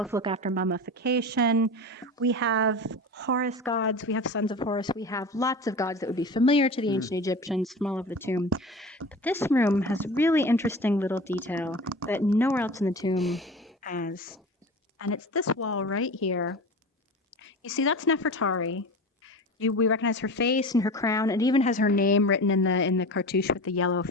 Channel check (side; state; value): both; normal; correlation 0.32